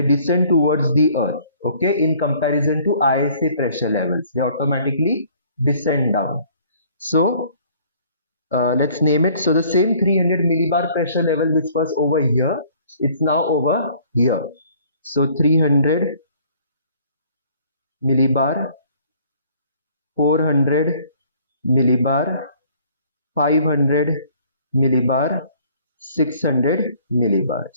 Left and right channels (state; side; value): inverted; both; correlation -0.57